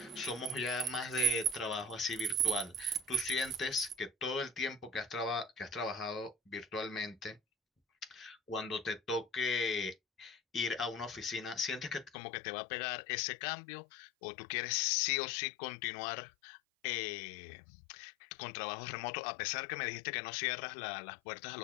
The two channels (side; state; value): right; drops out; at 12.2 s